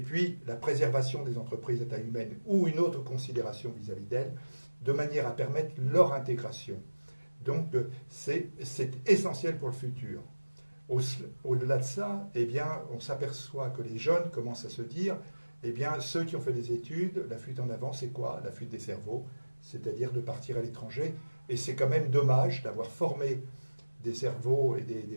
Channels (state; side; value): inverted; both; correlation -1.00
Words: puis la préservation des entreprises à taille humaine ou une autre considération vis-à-vis d'elles, de manière à permettre leur intégration. Donc c'est essentiel pour le futur. Au-delà de ça, eh bien, on s'aperçoit que les jeunes commencent à se dire, eh bien, ceux qui ont fait des études, la fuite en avant, c'est quoi? La fuite des cerveaux, c'est-à-dire de partir à l'étranger. Et c'est quand même dommage d'avoir formé des cerveaux et des